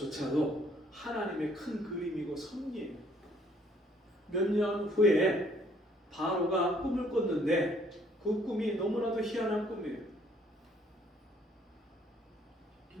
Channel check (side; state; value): both; normal; correlation 0.63